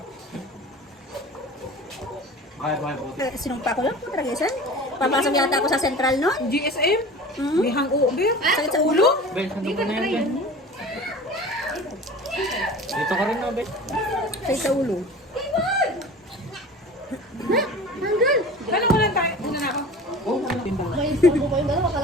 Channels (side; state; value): both; normal; correlation 0.38